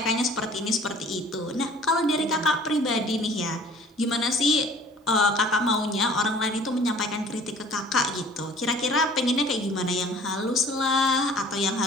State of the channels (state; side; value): normal; both; correlation 0.51